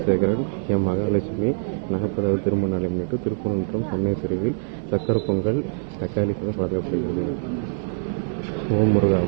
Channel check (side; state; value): left; silent; 63 dB below the other